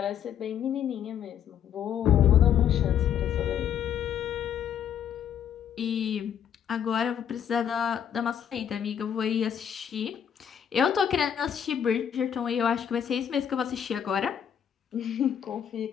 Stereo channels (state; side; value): quieter; right; 8.9 dB